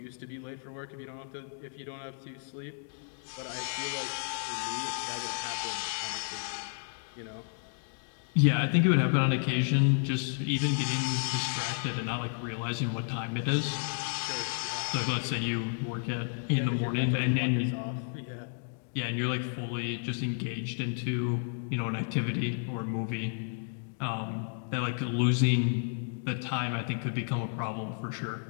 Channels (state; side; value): silent; right; digital silence